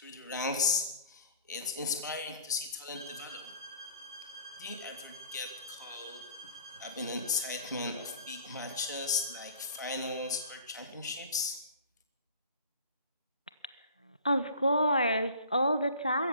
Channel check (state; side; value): inverted; both; correlation -0.47